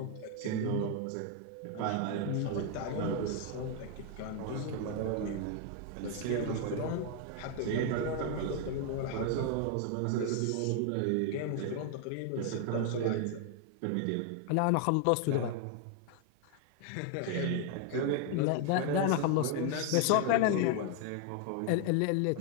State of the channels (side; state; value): both; different; correlation 0.00